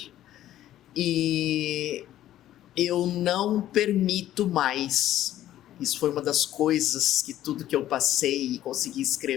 E eu não permito mais. Isso foi uma das coisas que tudo que eu passei e consegui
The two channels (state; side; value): quieter; right; 12.9 dB